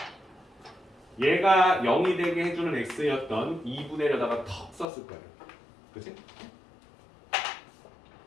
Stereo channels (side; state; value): right; drops out; at 4.9 s